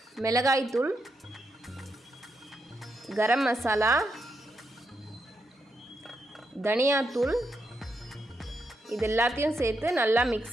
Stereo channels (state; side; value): normal; both; correlation 0.82